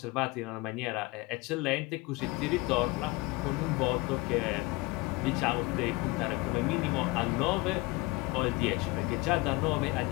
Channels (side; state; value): right; quieter; 23.1 dB